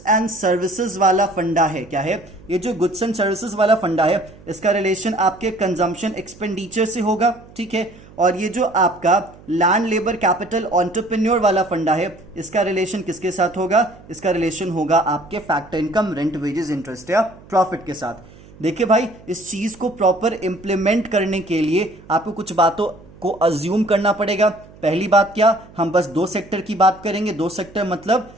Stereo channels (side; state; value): right; noise; hum, 22 dB below the sound